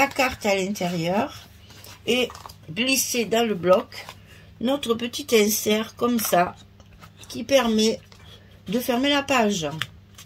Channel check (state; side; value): identical; both; correlation 1.00